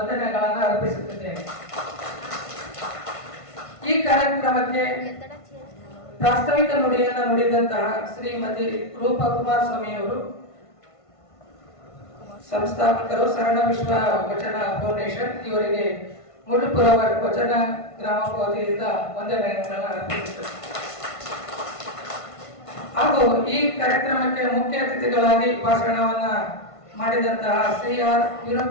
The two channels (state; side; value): late; right; 1.5 ms